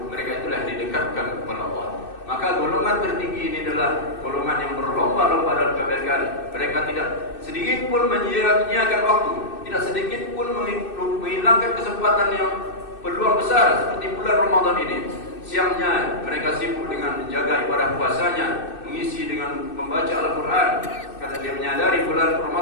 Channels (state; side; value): late; right; 2.6 ms